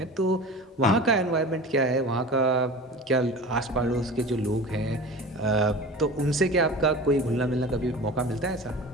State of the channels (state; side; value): normal; both; correlation 0.35